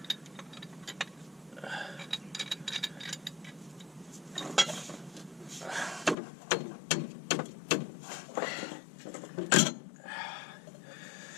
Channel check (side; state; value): right; drops out; at 6.2 s